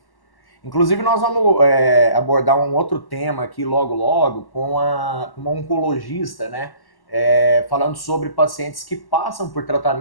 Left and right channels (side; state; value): right; late; 1.1 ms